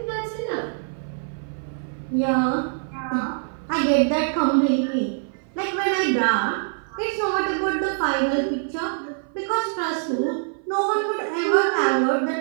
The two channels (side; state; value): left; silent; 56 dB below the other